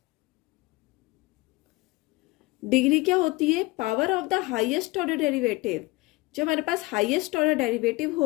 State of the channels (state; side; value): quieter; right; 22.5 dB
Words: degree क्या होती है? Power of the highest order derivative. जब हमारे पास highest order derivative